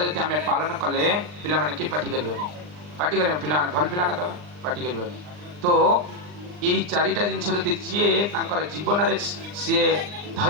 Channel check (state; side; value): late; left; 39 ms